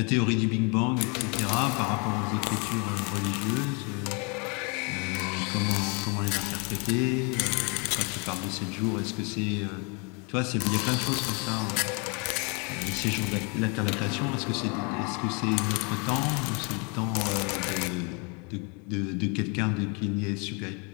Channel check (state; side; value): quieter; right; 32.9 dB